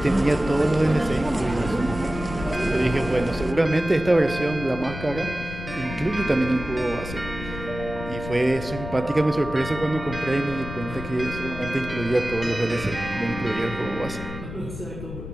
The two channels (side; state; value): left; noise; rumble, 10 dB below the sound